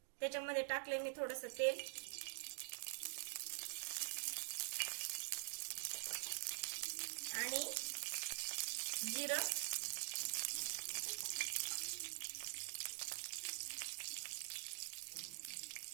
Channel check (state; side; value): silent; left; digital silence